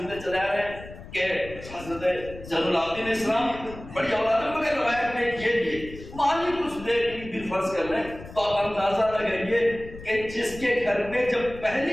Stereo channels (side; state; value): left; noise; rumble, 15 dB below the sound